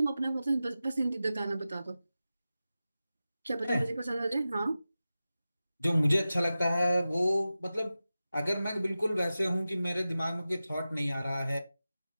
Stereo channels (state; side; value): inverted; both; correlation -0.94